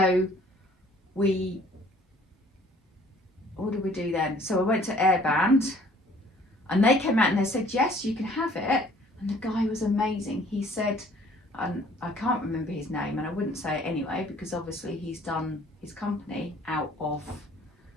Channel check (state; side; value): normal; both; correlation 0.56